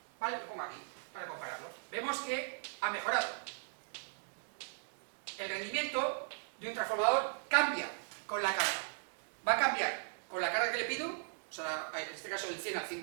¿Vale? Lo pongo aquí para compararlo. Vemos que ha mejorado. El rendimiento de un transformador cambia con la carga. Va a cambiar con la carga que le pido, o sea, en este caso del 100 al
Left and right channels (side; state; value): left; silent; digital silence